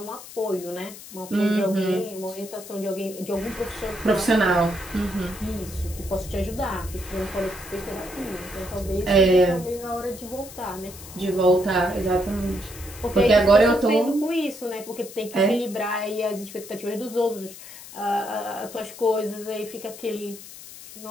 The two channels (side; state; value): left; noise; hiss, 15 dB below the sound